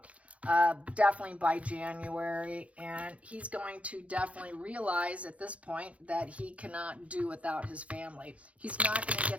definitely by January, and he's going to definitely realize at this point that he cannot do without his family. He's not going to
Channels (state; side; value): late; left; 0.064 ms